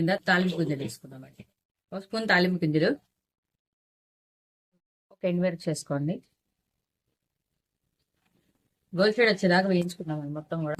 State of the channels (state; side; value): identical; both; correlation 1.00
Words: తాలింపు గింజలు వేసుకుందామండి. ఒక స్పూన్ తాలింపు గింజలు, ఒక ఎండుమిరపకాయ చేసుకోండి. గోల్ షేడ్ వచ్చేదాకా వేయించుకుందామండి. మొత్తం కూడా